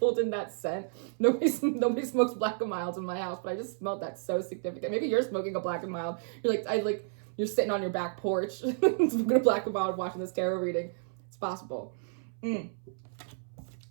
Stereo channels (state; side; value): silent; left; 57 dB below the other